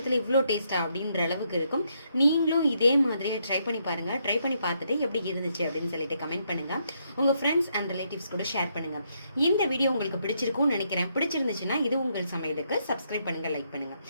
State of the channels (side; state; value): both; inverted; correlation -0.76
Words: இவ்வளோ டேஸ்ட்டாக அப்படின்ற அளவுக்கு இருக்கும். நீங்களும் இதே மாதிரியே ட்ரை பண்ணி பாருங்கள். ட்ரை பண்ணி பார்த்துட்டு எப்படி இருந்துச்சு அப்படின்னு சொல்லிட்டு கமெண்ட் பண்ணுங்கள். உங்கள் ஃப்ரெண்ட்ஸ் அண்ட் ரிலேட்டிவ்ஸ் கூட ஷேர் பண்ணுங்கள். இந்த வீடியோ உங்களுக்கு பிடிச்சிருக்கும்னு நினைக்கிறேன். பிடிச்சிருந்துச்சுன்னா இது உங்கள் சமையலுக்கு சப்ஸ்கிரைப் பண்ணுங்கள், லைக் பண்ணுங்கள்.